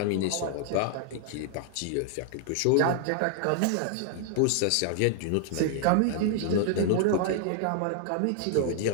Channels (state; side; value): different; both; correlation 0.00